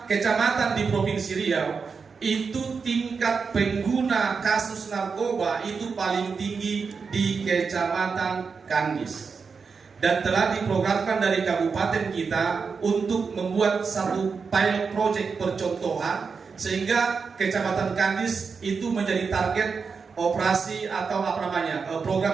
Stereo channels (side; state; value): left; quieter; 5.3 dB